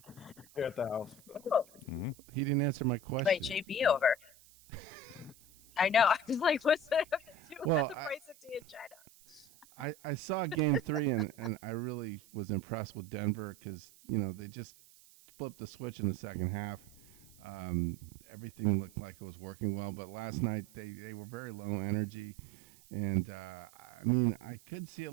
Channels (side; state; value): right; noise; hiss, 25 dB below the sound